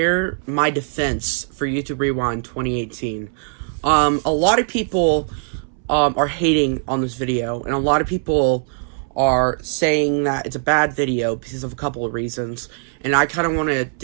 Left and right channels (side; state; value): left; silent; 65 dB below the other